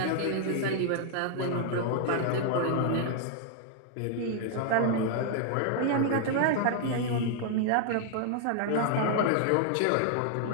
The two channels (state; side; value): different; both; correlation 0.00